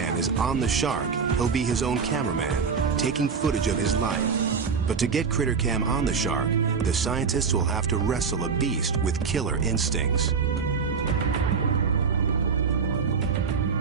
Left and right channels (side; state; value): left; quieter; 5.7 dB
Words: is on the shark, he'll be his own cameraman, taking footage of his life. But to get CritterCam on the shark, the scientists will have to wrestle a beast with killer instincts.